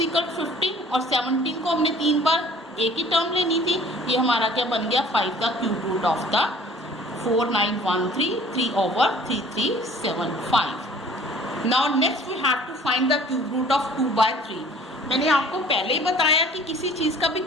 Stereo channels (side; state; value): both; normal; correlation 0.51